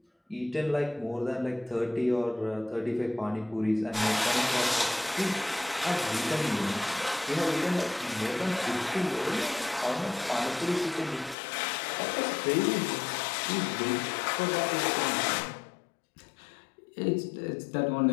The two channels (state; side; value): drops out; right; at 11.4 s